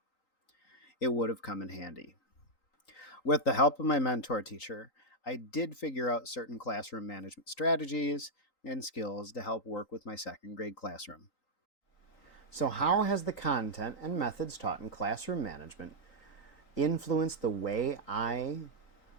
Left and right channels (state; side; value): late; right; 3.9 ms